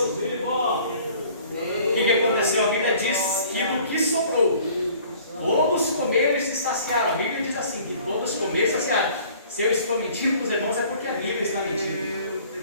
O que aconteceu? A Bíblia diz que do que sobrou, todos comeram e se saciaram. A Bíblia diz assim, que todos comeram e se saciaram. Se eu estou mentindo para os irmãos, é porque a Bíblia está mentindo.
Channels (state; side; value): inverted; both; correlation -0.52